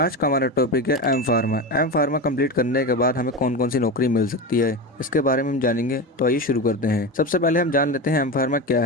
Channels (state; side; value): normal; both; correlation 0.22